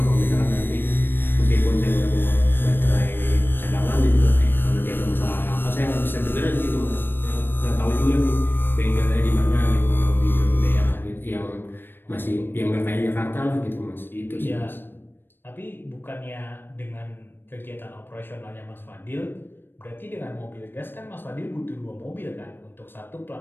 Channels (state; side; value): late; right; 0.097 ms